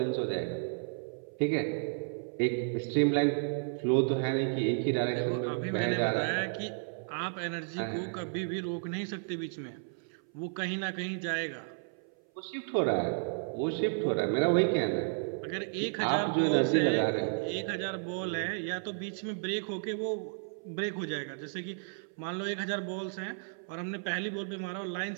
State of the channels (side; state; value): left; silent; 56 dB below the other